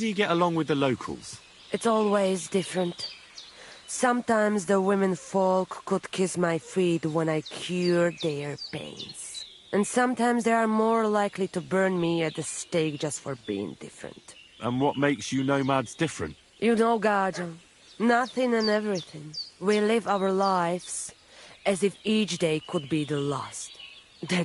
you get along with the locals? It's always different. Sometimes the women folk could kiss my feet when I cured their pains. And sometimes they are more likely to burn me at the stake just for being different. And what makes you nomads different? You know, Gajo, nothing and everything. We live our lives as if each day could be the last.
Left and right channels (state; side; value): identical; both; correlation 1.00